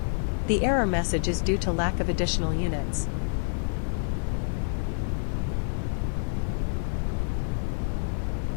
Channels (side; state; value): right; silent; digital silence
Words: The error message is due to lack of additional units.